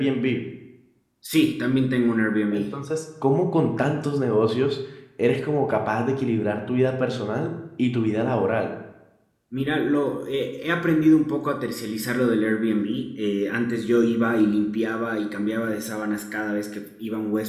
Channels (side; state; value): both; identical; correlation 1.00